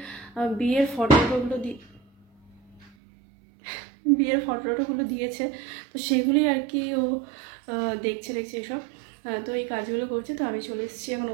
বিয়ের ফটোগুলো দিয়েছে, তো সেগুলি আর কি ও দেখছে এসব। তো এই কাজগুলো করছে। তো আমি চলে এসেছি এখন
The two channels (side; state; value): left; drops out; at 2.9 s